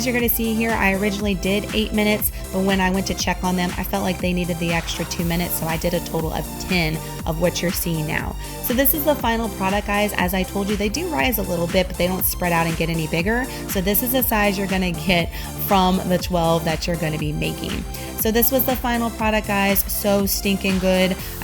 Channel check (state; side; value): identical; both; correlation 1.00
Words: you're going to see here, I originally did 8 minutes, but when I went to check on them, I felt like they needed the extra 2 minutes, so I did a total of 10 of what you're seeing now. So this is the final product, guys. As I told you, they do rise a little bit, but they don't spread out and get any bigger. So this is the size you're going to get from the 12 that you're going to be making. So this was the final product, guys. So stinking good.